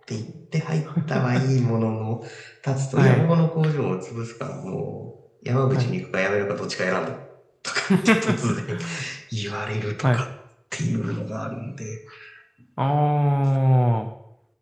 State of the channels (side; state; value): both; identical; correlation 1.00